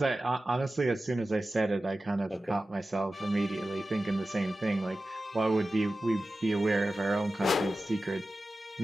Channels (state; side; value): normal; both; correlation 0.94